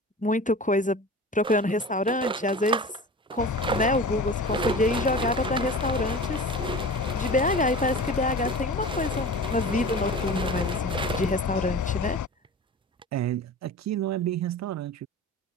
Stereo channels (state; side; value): normal; both; correlation 0.35